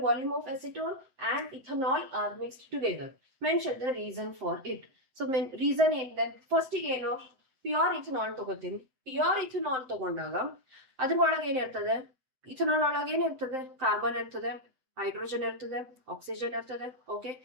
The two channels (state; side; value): late; left; 7.7 ms